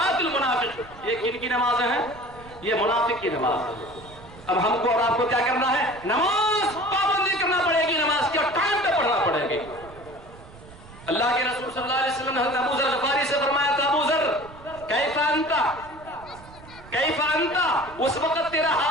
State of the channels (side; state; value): right; noise; rumble, 20 dB below the sound